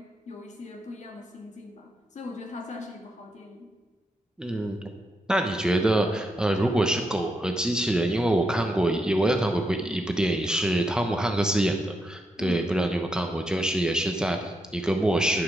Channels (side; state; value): both; normal; correlation 0.81